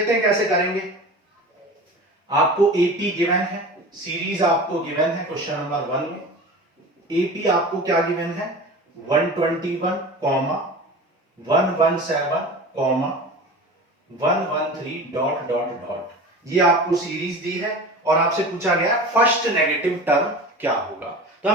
हैं कैसे करेंगे। आपको एपी गिवन है, सीरीज आपको गिवन है क्वेश्चन नंबर 1 में। एपी आपको क्या गिवन है 121, 117, 113 डॉट डॉट डॉट। ये आपको सीरीज दी है और आपसे पूछा गया फर्स्ट नेगेटिव टर्म क्या होगा। तो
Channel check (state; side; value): normal; both; correlation 0.34